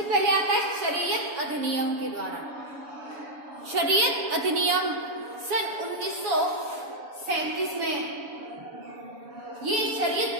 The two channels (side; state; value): left; late; 7.0 ms